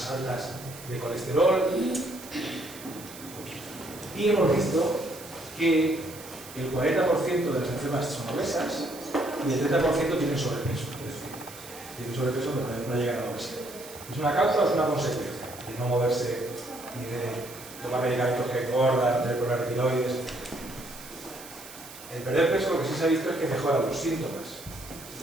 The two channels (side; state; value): right; noise; hiss, 16 dB below the sound